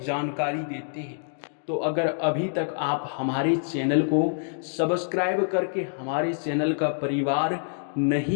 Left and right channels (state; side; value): silent; right; digital silence